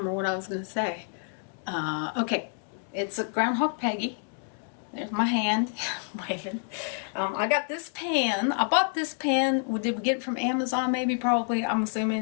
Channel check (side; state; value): right; silent; 59 dB below the other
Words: what I was going to say. Okay, it's a Groundhog Peggy. There's my hand waving. I got this pan. I bought this pan. Did we get it from Amazon? Maybe, probably. I'm